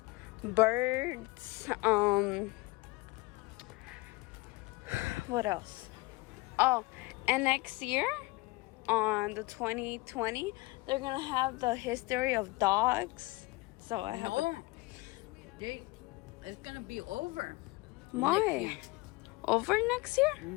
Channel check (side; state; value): right; quieter; 23.4 dB